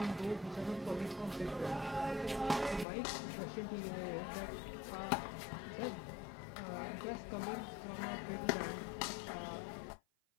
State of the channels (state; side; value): drops out; right; at 2.9 s